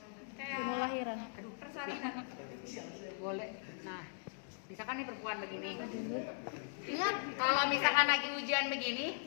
Mau lahiran. Aduh, boleh. Nah, misalkan nih perempuan begini. Ingat, kalau misalkan lagi ujian begini,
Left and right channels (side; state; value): right; silent; digital silence